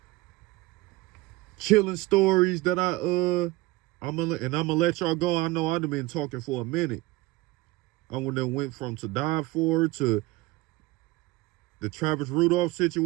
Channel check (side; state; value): left; quieter; 20.2 dB